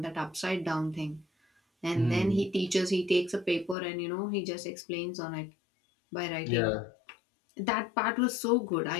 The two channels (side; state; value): right; drops out; at 3.8 s